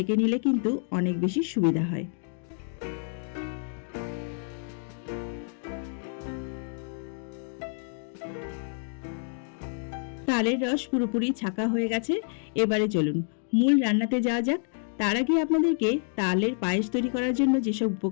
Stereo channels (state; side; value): silent; right; 59 dB below the other